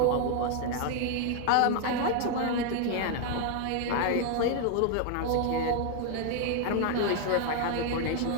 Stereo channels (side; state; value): both; different; correlation 0.00